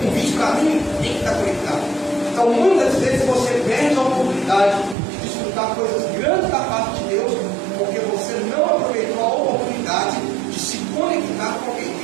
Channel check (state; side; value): drops out; left; at 5.0 s